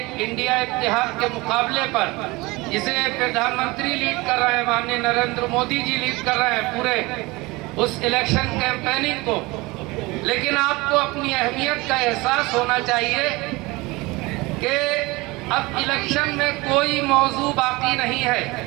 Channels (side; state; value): left; quieter; 22.9 dB